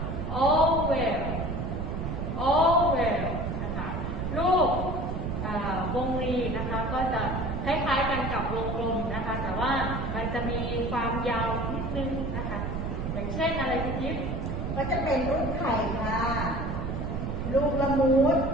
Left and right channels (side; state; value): right; noise; rumble, 3 dB below the sound